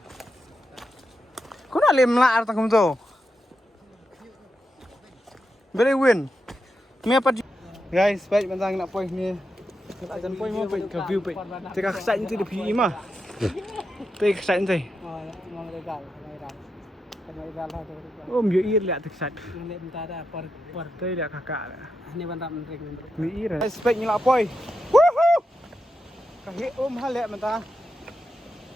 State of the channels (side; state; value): both; normal; correlation 0.86